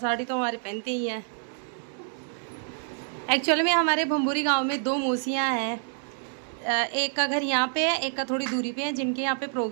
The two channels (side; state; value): left; silent; 60 dB below the other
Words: तो हमारे पहनते ही हैं। एक्चुअली में हमारे भंबूरी गांव में 2 मौसियाँ हैं। एक का घर यहाँ पे है, एक का थोड़ी दूरी पे है, जिनके यहाँ पे